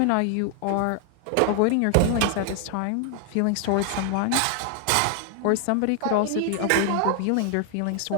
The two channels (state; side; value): different; both; correlation 0.00